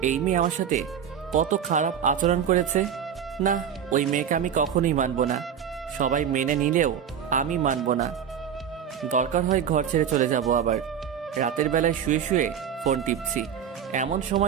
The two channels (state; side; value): quieter; left; 8.4 dB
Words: এই মেয়ে আমার সাথে কত খারাপ আচরণ করেছে? না, ওই মেয়েকে আমি কখনোই মানব না। সবাই মেনে নিলেও আমি মানব না। দরকার হয় ঘর ছেড়ে চলে যাব। আবার রাতের বেলায় শুয়ে শুয়ে ফোন টিপছি, এমন